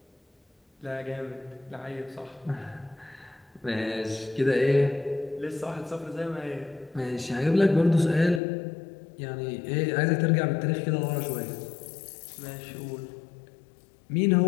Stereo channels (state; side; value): drops out; right; at 8.4 s